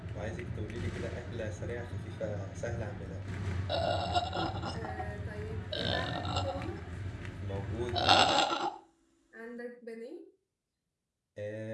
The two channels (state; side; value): identical; both; correlation 1.00